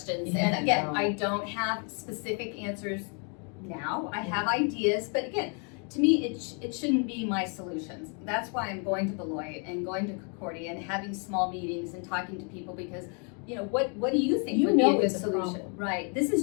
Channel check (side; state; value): right; quieter; 38.0 dB